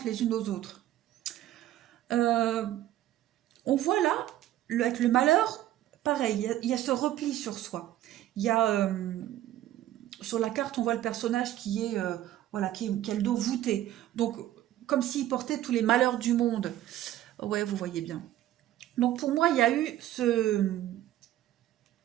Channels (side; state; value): left; quieter; 13.3 dB